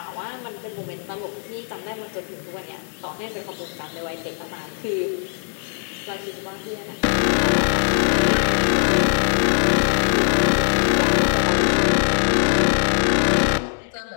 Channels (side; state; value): right; silent; digital silence